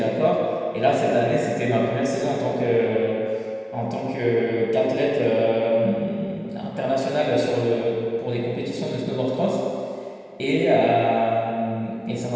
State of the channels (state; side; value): identical; both; correlation 1.00